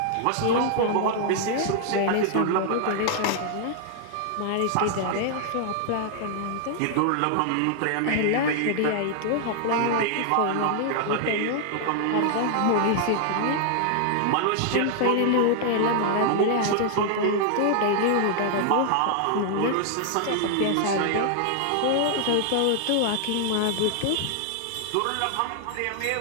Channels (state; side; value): different; both; correlation 0.00